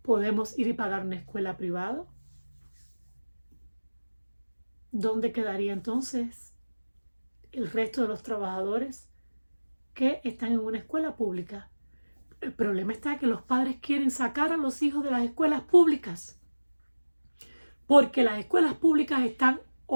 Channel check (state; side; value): inverted; both; correlation -1.00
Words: podemos ir y pagar una escuela privada, ¿dónde quedaría entonces el resto de los trabajadores que están en una escuela pública? El problema está que los padres quieren sacar a los hijos de las escuelas públicas, porque las escuelas públicas están